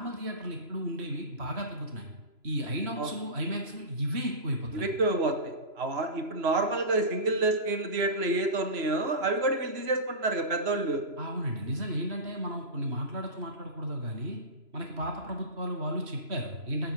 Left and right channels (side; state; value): left; late; 3.0 ms